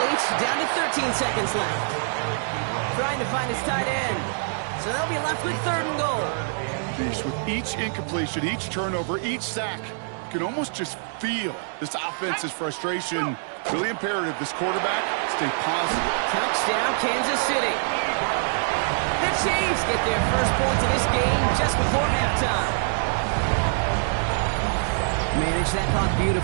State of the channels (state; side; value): silent; left; digital silence